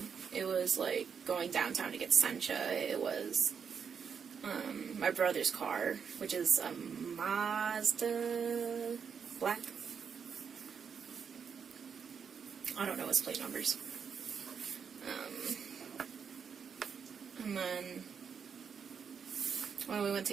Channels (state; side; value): quieter; left; 6.7 dB